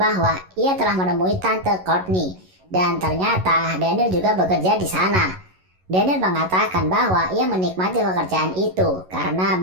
bahwa ia telah menemui Tante Courtney, dan ternyata Daniel juga bekerja di sana. Daniel mengatakan bahwa ia menikmati pekerjaan itu karena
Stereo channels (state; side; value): late; left; 11 ms